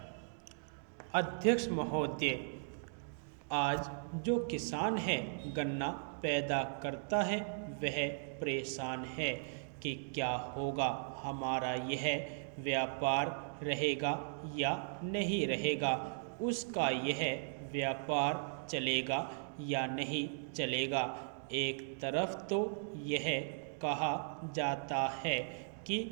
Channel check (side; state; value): left; silent; digital silence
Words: अध्यक्ष महोदय, आज जो किसान है गन्ना पैदा करता है वह परेशान है कि क्या होगा, हमारा यह व्यापार रहेगा या नहीं रहेगा, उसका यह व्यापार चलेगा या नहीं चलेगा। एक तरफ तो यह कहा जाता है कि